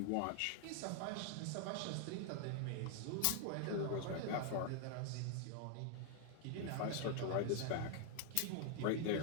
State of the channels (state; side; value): different; both; correlation 0.00